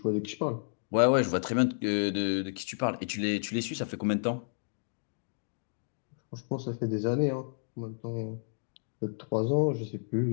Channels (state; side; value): silent; right; digital silence